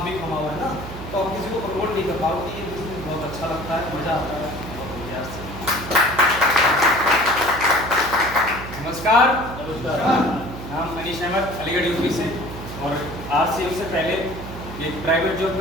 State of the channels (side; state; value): right; noise; hum, 11 dB below the sound